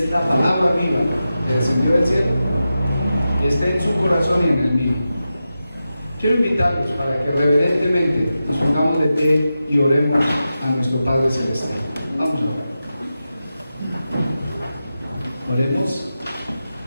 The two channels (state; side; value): inverted; both; correlation -0.91